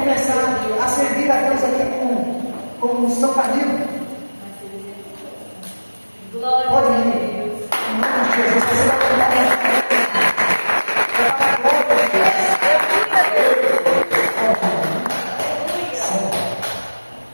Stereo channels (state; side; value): inverted; both; correlation -1.00